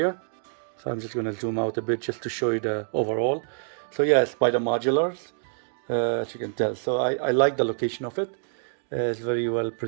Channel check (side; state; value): left; silent; digital silence